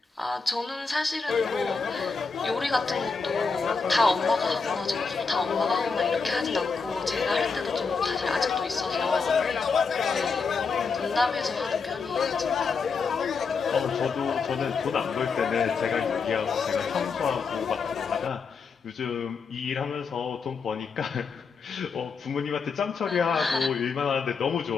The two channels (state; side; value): quieter; right; 5.0 dB